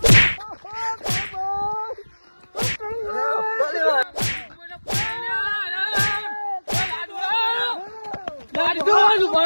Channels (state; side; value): inverted; both; correlation -1.00